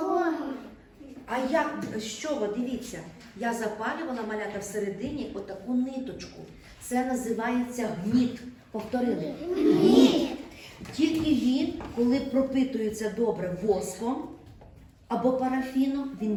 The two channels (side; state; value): both; identical; correlation 1.00